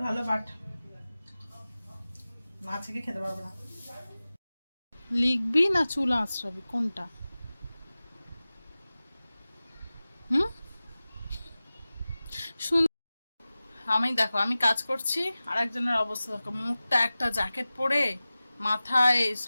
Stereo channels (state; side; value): inverted; both; correlation -0.97